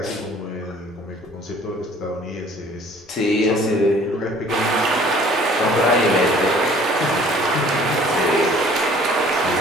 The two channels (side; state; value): both; normal; correlation 0.53